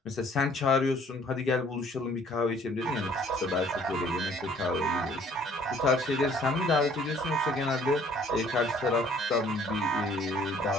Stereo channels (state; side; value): normal; both; correlation 0.57